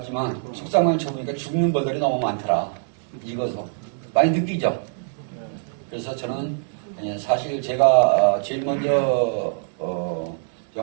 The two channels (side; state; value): left; silent; digital silence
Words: 속상관을 쳐보니까 죽는 벌들이 너무 많더라. 익어서. 많이 느끼죠? 그래서 저는, 사실 제가 제일 먼저,